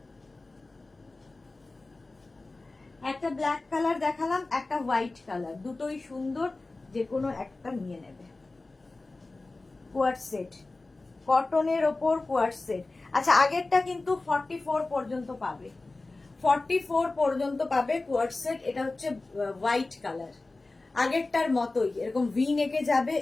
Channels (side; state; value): right; quieter; 3.3 dB